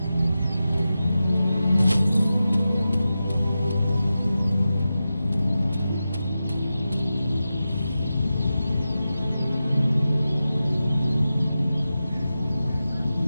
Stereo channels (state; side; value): inverted; both; correlation -0.92